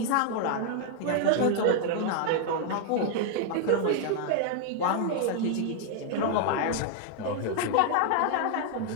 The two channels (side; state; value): both; different; correlation 0.00